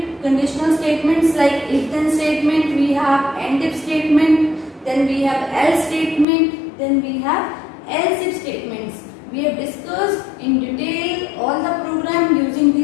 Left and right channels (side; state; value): right; drops out; at 6.2 s